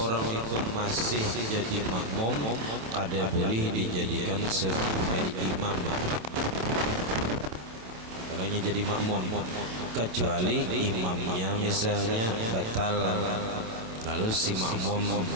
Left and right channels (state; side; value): late; left; 27 ms